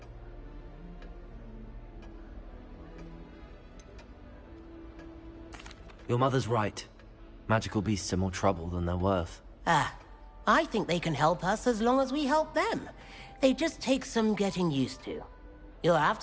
Your mother's right. Magical beasts are more trouble than they're worth. I think they can help us as long as we help them. They just take some getting used to. You'll have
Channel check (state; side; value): identical; both; correlation 1.00